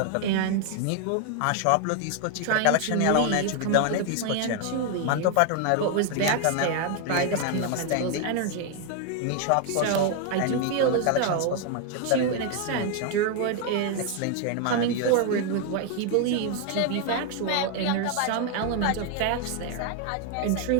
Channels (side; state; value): both; different; correlation 0.01